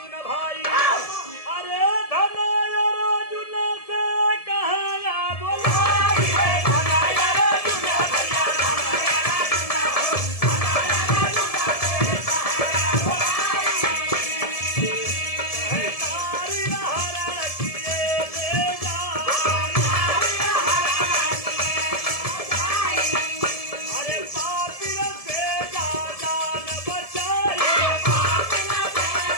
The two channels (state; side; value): late; right; 1.7 ms